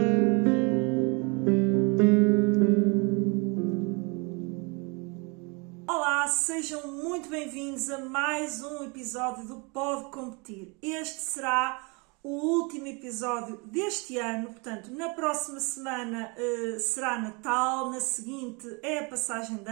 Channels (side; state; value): left; quieter; 30.5 dB